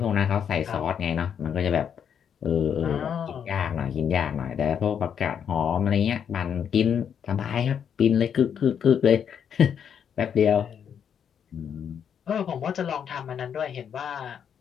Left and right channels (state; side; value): quieter; right; 8.0 dB